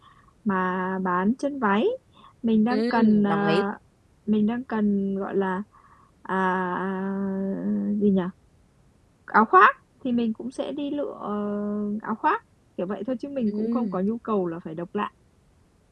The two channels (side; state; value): both; identical; correlation 1.00